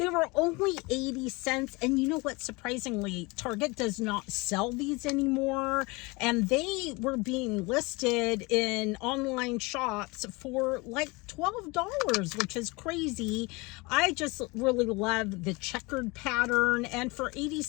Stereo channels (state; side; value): quieter; right; 25.6 dB